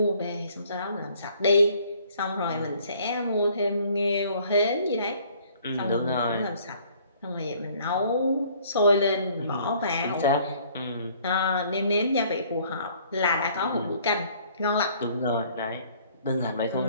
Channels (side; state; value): both; inverted; correlation -0.59